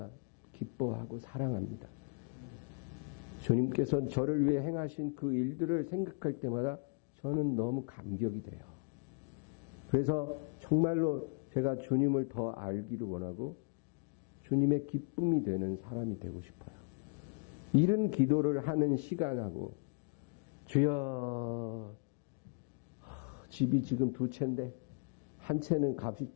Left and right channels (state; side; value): quieter; right; 37.0 dB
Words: 기뻐하고 사랑합니다. 주님께서 저를 위해 행하신 그 일들을 생각할 때마다 저는 너무 감격이 돼요. 그래서 정말로 제가 주님을 더 알기를 원하고 주님의 기쁨이 되는 사람이 되고 싶어요. 이런 기도를 하는 시간하고 주여 집이 지금 2채인데 한 채는 값이